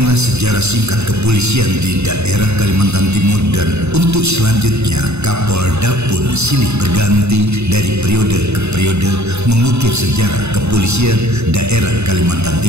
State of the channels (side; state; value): left; late; 0.81 ms